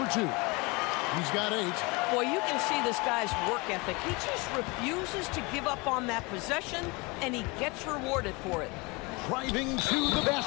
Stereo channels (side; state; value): right; quieter; 26.6 dB